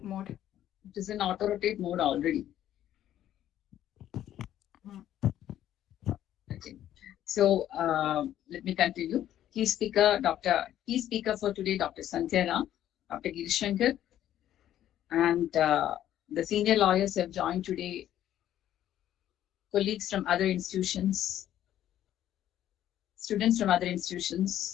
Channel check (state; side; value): quieter; right; 11.8 dB